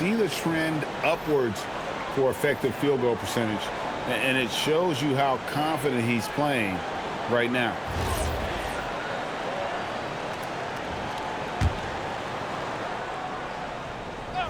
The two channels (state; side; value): identical; both; correlation 1.00